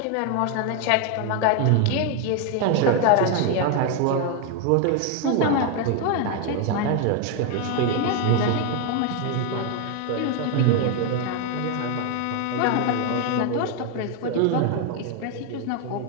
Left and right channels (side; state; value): both; different; correlation 0.01